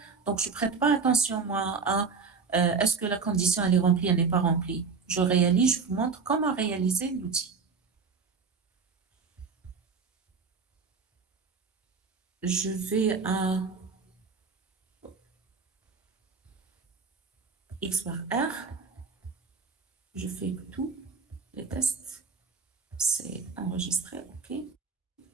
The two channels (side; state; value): left; quieter; 5.1 dB